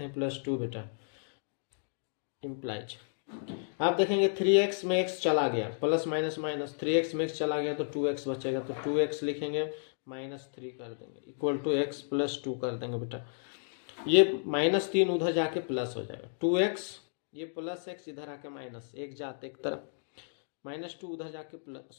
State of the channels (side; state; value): right; silent; digital silence